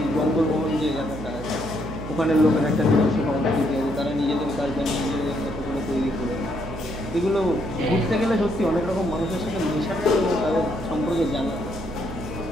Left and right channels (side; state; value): right; noise; hum, 10 dB below the sound